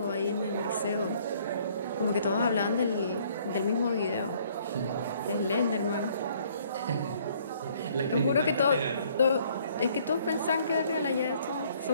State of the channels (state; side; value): inverted; both; correlation -0.62